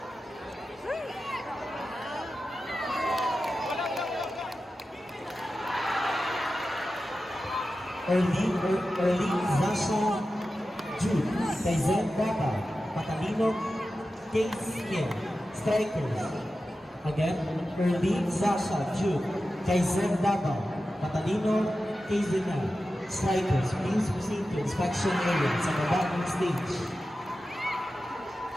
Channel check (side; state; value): both; normal; correlation 0.93